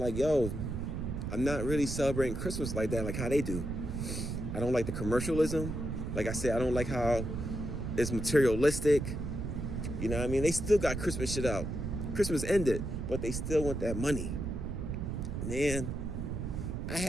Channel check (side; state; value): right; noise; rumble, 4 dB below the sound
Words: like, yo, I'm not really celebrating Christmas like that, like how they do. I don't like the commercialism. Like I said, I don't like how it's materialistic. You know what I mean? They still got Christmas shit out. Christmas ended, but they still want that money. Man, I